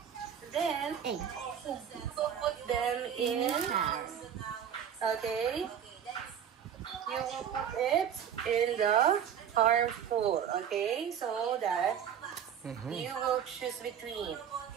then you will put them in, okay, you will put it in the harmful, okay, so that you will choose between.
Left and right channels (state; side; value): quieter; left; 8.7 dB